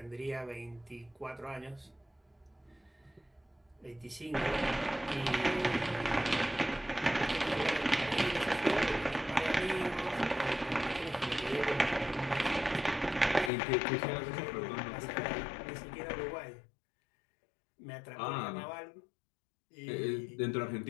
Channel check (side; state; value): right; drops out; at 13.5 s